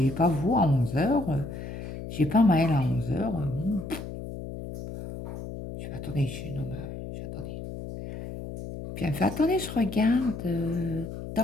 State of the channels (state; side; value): noise; left; hum, 9 dB below the sound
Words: pas vous à 11 heures. J'ai pas Maëlle à 11 heures. Je fais, attendez, attendez. Puis elle me fait, attendez, je regarde